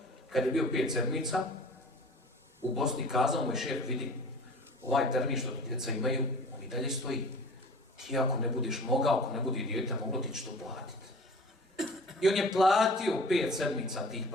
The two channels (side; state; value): both; normal; correlation 0.43